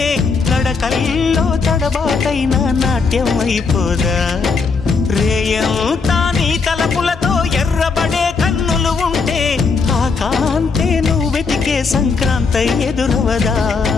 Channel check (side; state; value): right; quieter; 4.8 dB